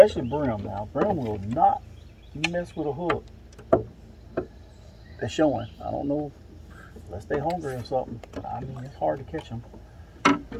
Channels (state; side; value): identical; both; correlation 1.00